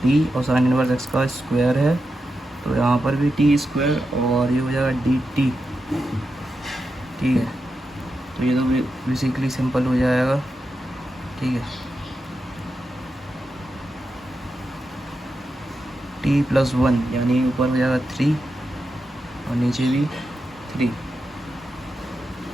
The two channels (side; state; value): both; normal; correlation 0.88